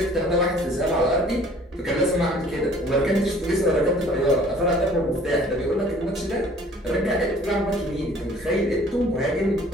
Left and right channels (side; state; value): both; normal; correlation 0.53